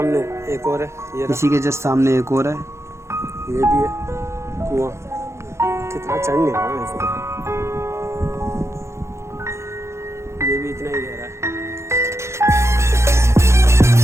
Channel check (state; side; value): late; left; 0.13 ms